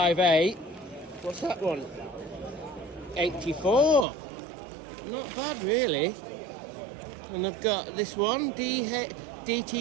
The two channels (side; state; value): left; drops out; at 4.0 s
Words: What's that one? 84. Not bad really. And I've got this one,